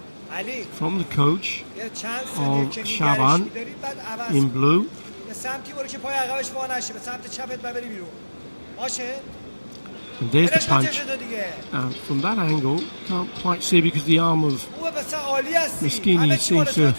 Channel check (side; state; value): both; inverted; correlation -1.00